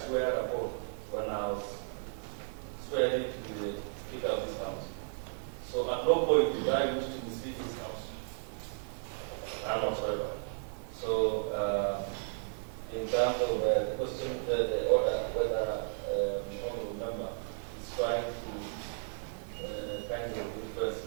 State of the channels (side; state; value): left; silent; digital silence